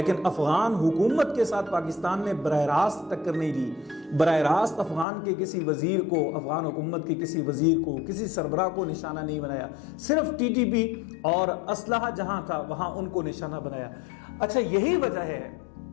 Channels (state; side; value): drops out; right; at 5.1 s